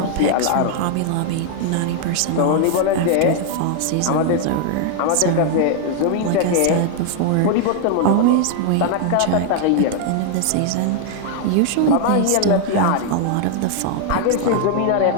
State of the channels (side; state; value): both; different; correlation 0.00